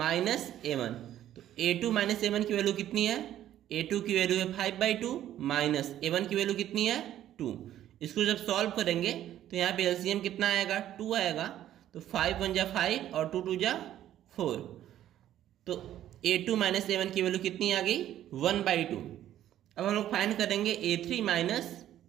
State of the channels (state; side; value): quieter; left; 12.0 dB